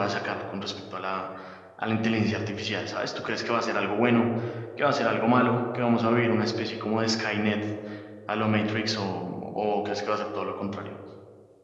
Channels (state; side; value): identical; both; correlation 1.00